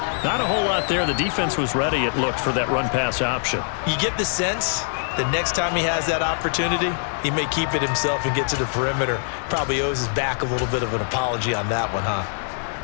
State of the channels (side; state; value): right; silent; digital silence